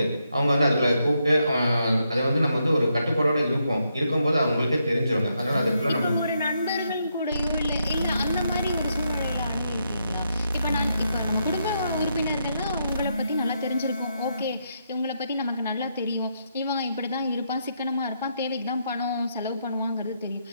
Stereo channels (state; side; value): inverted; both; correlation -0.80